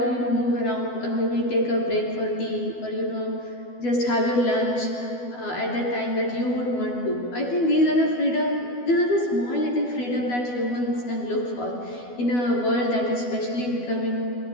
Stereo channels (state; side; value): late; right; 12 ms